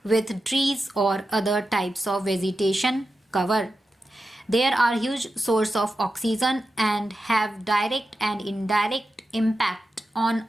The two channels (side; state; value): both; normal; correlation 0.91